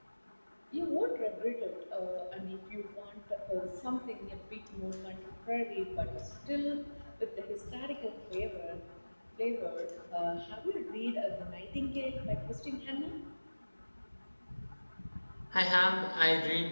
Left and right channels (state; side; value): inverted; both; correlation -1.00